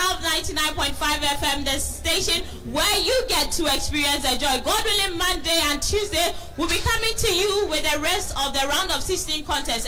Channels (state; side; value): identical; both; correlation 1.00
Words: 99.5 FM, the station where you get to experience the joy. God willing, Monday and Tuesday we'll be coming to you with the rest of the round of 16